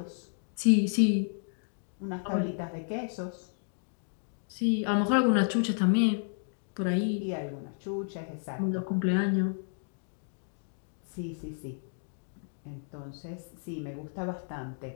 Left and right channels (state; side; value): silent; right; digital silence